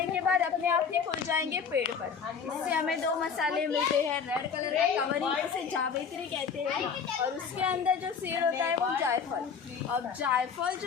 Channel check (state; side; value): quieter; right; 6.3 dB